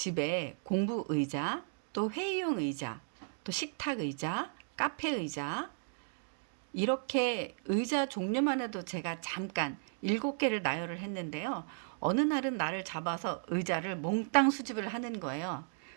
공부 의자, 또 회의용 의자, 또 식탁 의자, 카페 의자, 이렇게 의자 종류만 해도 제가 잠깐 7개를 나열을 했는데요. 어느 날은 나를 잡아서 의자를 몽땅 수집을 하는 거예요.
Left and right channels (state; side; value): silent; left; digital silence